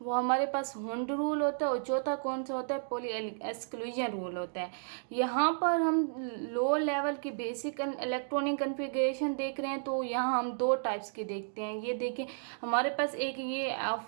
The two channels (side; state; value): left; silent; digital silence